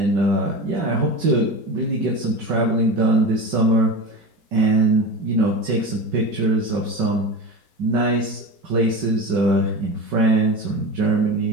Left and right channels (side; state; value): left; late; 4.5 ms